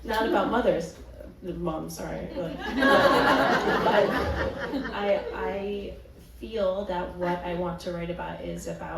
Not about mothers. Mom, sorry. But I feel that what I want to write about is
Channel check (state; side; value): identical; both; correlation 1.00